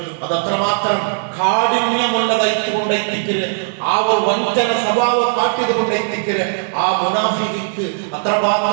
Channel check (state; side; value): silent; left; digital silence